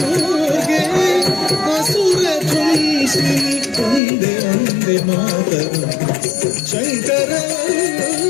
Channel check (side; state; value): right; drops out; at 4.0 s